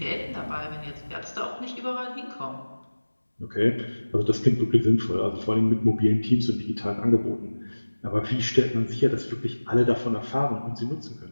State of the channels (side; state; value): both; inverted; correlation -1.00